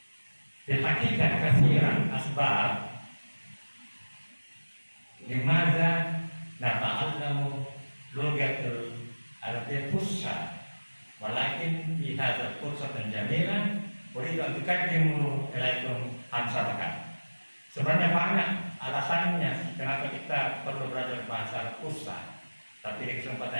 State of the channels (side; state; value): both; inverted; correlation -1.00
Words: Di hakikat kasiran asbab limadza nata'allamu lugatul Arabiyyah fusha walakin fi hadzal fursatan jamilan uridu an tuqaddimu ilaikum amsalakan. Sebenarnya banyak alasannya kenapa kita perlu belajar bahasa fusha, tapi di